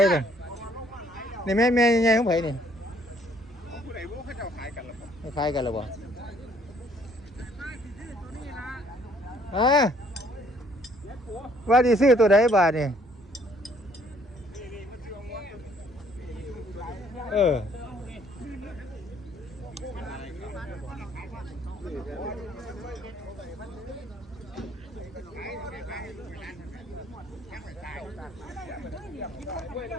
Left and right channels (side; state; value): both; normal; correlation 0.62